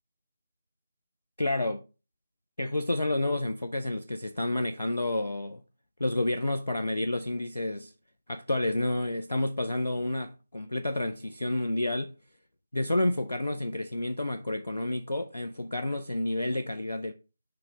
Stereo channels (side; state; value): both; inverted; correlation -0.92